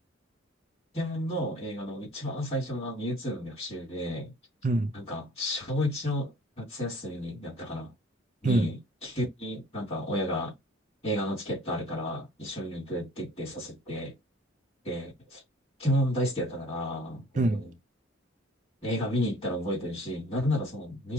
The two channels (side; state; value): both; normal; correlation 0.51